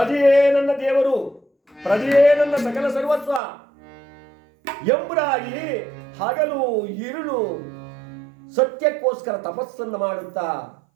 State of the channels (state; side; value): drops out; left; at 3.4 s